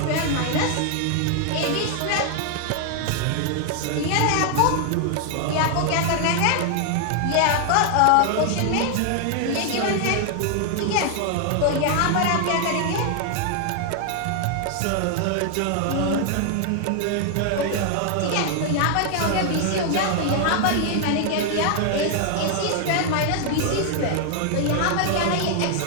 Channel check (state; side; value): different; both; correlation 0.00